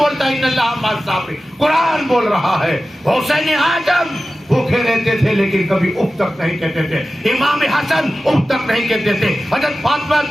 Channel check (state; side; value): normal; both; correlation 0.95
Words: ہے ان اللہ مع الصابرین. قرآن بول رہا ہے. حسین اعظم بھوکے رہتے تھے لیکن کبھی اف تک نہیں کہتے تھے. امام حسن اف تک نہیں کہتے تھے. حضرت فاطمہ